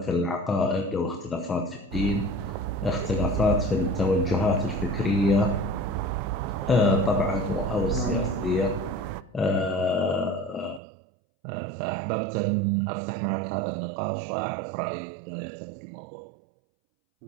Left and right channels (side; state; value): left; drops out; at 10.8 s